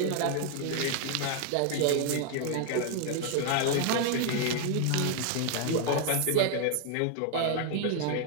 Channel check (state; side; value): different; both; correlation 0.00